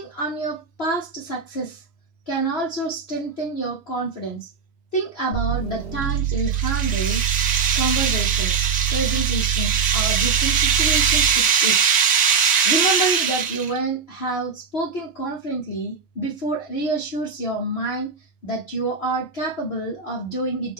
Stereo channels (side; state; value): left; quieter; 5.6 dB